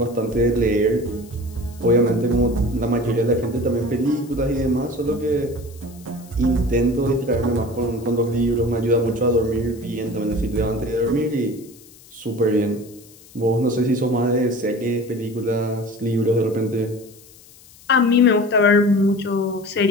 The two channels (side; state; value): left; noise; hiss, 24 dB below the sound